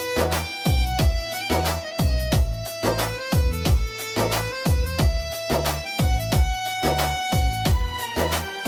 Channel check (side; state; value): both; identical; correlation 1.00